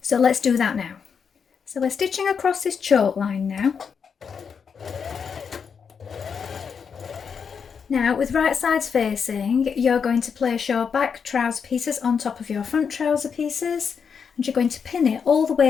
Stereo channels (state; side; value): quieter; right; 6.4 dB